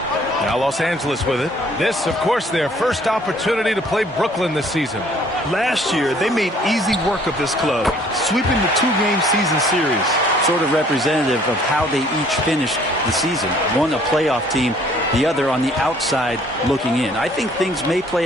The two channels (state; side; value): normal; both; correlation 0.59